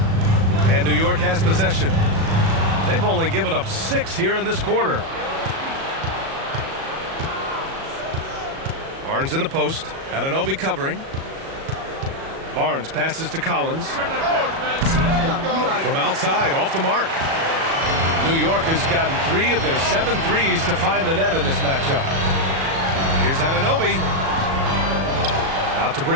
And New York has possession. They've only given up 6 here in this quarter. Barnes in the post. Anunoby covering. Barnes passes to Collins. From outside, off the mark. New York has gotten 3 of their 7 threes to find the net in this matchup. Here's Anunoby. Out to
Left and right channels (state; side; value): late; left; 37 ms